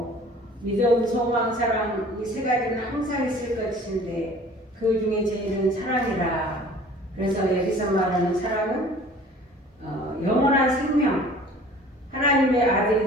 믿음, 소망, 사랑 이 세 가지는 항상 있을 것인데 그 중에 제일은 사랑이라. 그래서 여기서 말하는 사랑은 영원한 생명, 하나님의 아들이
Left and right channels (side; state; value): both; normal; correlation 0.48